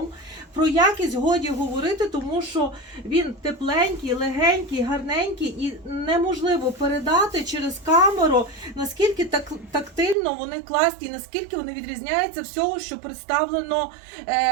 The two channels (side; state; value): left; drops out; at 10.2 s